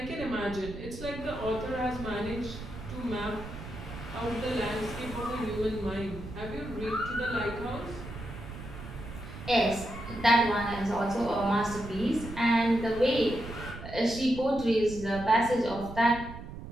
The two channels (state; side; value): noise; right; rumble, 11 dB below the sound